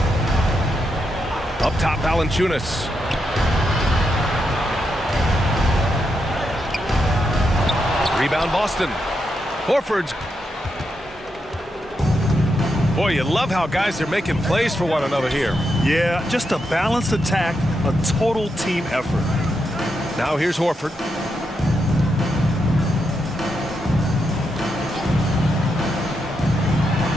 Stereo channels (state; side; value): normal; both; correlation 0.83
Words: Up top, Valanciunas. Rebound, Boston. Horford's. Boy, you love how guys are making plays for one another here. Yeah, just a balanced attack, a total team effort. Now here's Horford.